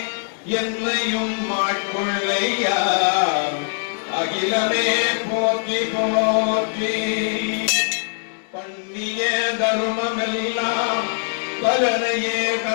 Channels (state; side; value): silent; right; digital silence